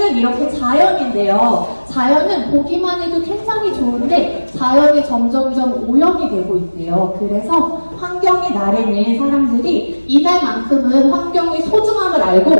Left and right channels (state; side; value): inverted; both; correlation -1.00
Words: 이렇게 자연인데요. 자연은 보기만 해도 굉장히 좋은데 자연이 점점점 오염이 되고 있대요. 그래서 환경의 날에는 사람들이 이날만큼은 환경의 소중함을